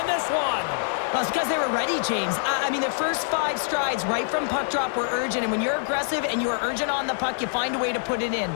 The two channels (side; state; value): right; silent; digital silence